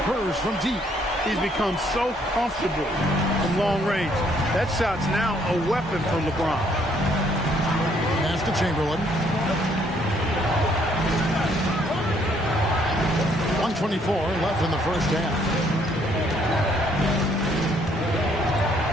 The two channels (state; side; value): normal; both; correlation 0.67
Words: from deep. He's become so comfortable from long range. That shot's now a weapon for LeBron. Pass to Chamberlain. 1:24 left in the first half.